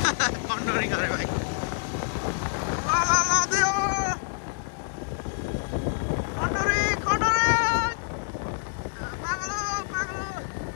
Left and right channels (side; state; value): right; silent; digital silence